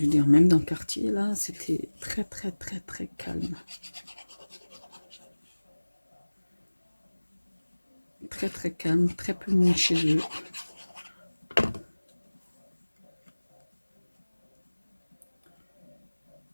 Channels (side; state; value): both; inverted; correlation -1.00